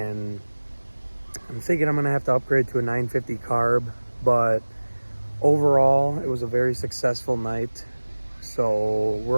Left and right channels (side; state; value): both; inverted; correlation -1.00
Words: I'm thinking I'm gonna have to upgrade to a 950 carb, but overall it was a very successful night. So